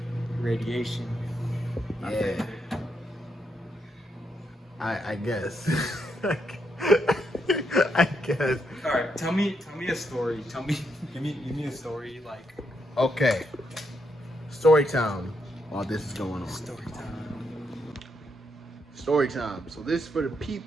Radiation. Yeah. I guess. I guess. All right, tell me a story. Give me a story like. Okay. Story time while this is going on. Story time. Story time. So this is for the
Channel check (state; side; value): normal; both; correlation 0.79